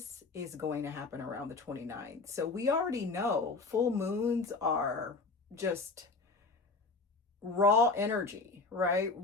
is going to happen around the 29th. So we already know full moons are just raw energy, right?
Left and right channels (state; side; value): quieter; right; 3.8 dB